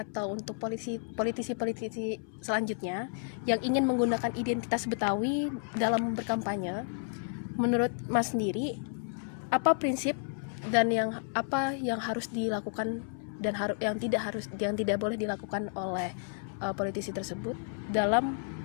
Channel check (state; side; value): silent; right; 57 dB below the other